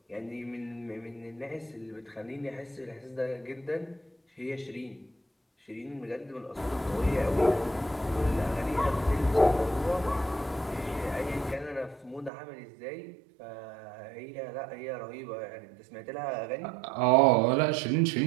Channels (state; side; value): drops out; left; at 12.3 s